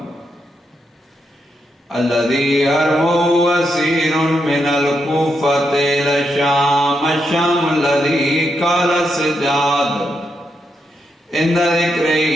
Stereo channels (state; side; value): normal; both; correlation 0.82